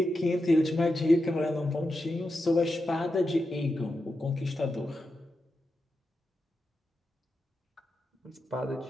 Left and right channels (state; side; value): normal; both; correlation 0.88